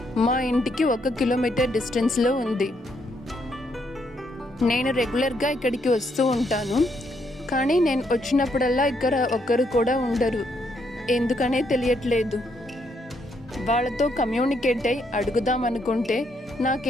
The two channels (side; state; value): both; normal; correlation 0.74